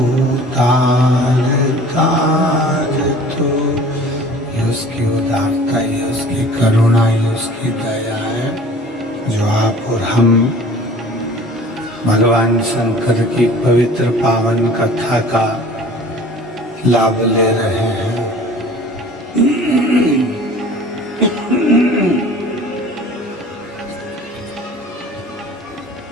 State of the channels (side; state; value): both; normal; correlation 0.45